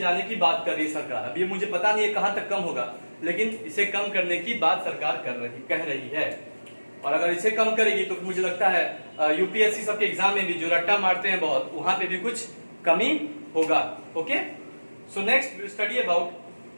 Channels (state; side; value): inverted; both; correlation -1.00